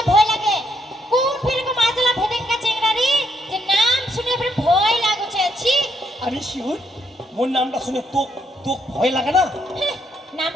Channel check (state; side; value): normal; both; correlation 0.74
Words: ভয় লাগে কোন ফিরকে মাজলা ভেদেঙ্কা চেংড়া রে যে নাম শুনে ফির ভয় লাগছে আছি। আরে শিউর মোর নামটা শুনে তোক তোক ভয় লাগে না? নাম